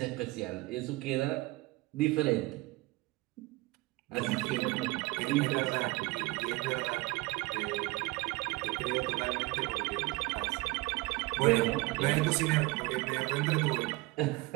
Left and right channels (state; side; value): quieter; left; 22.1 dB